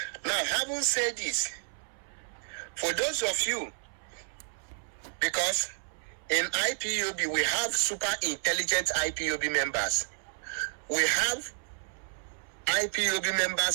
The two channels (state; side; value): silent; left; 57 dB below the other